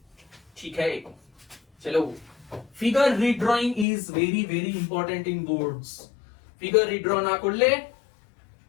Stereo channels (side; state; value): right; drops out; at 3.9 s